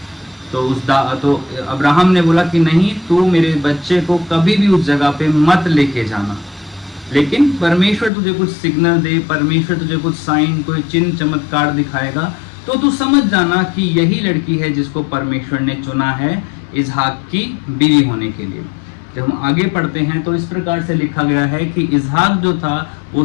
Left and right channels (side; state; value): right; drops out; at 8.1 s